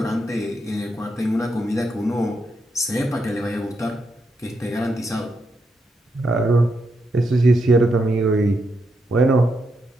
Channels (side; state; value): both; normal; correlation 0.82